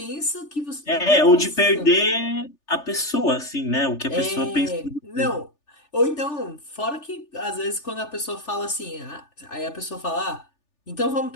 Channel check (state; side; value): late; right; 3.4 ms